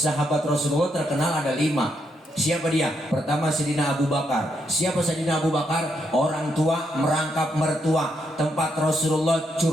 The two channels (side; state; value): both; normal; correlation 0.79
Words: Rasulullah terkenal ada 5. Siapa dia? Pertama Sayyidina Abu Bakar. Siapa Sayyidina Abu Bakar? Orang tua merangkap mertua, tempat Rasulullah